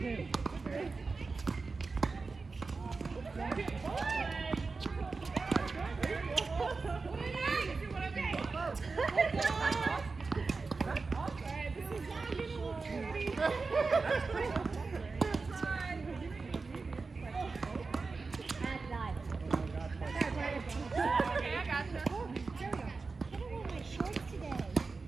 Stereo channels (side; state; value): left; quieter; 4.2 dB